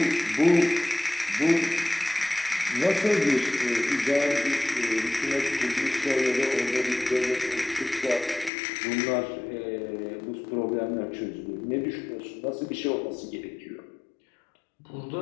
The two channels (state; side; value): drops out; right; at 8.5 s